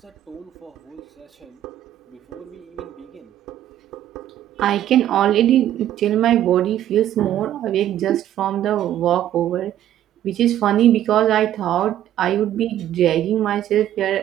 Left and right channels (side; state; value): left; quieter; 11.9 dB